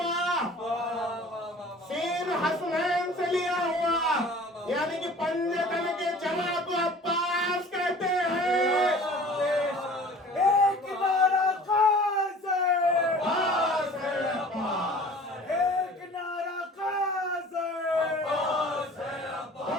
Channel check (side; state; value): both; normal; correlation 0.46